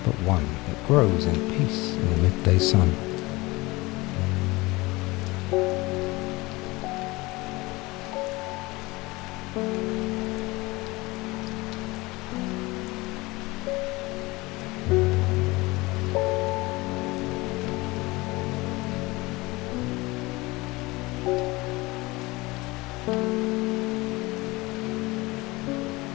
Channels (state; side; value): quieter; right; 22.3 dB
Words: but one, it grows in peace in the midday sun.